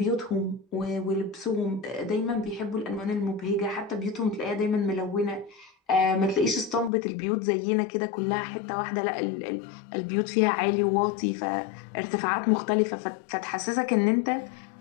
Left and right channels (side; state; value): right; drops out; at 6.9 s